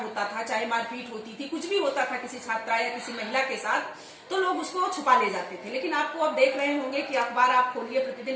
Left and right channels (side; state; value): both; identical; correlation 1.00